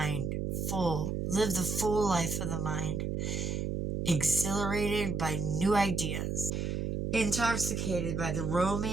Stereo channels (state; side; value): noise; right; hum, 1 dB below the sound